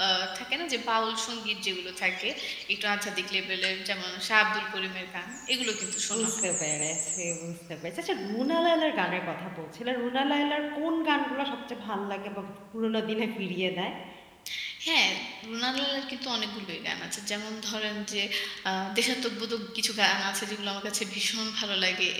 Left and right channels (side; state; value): both; identical; correlation 1.00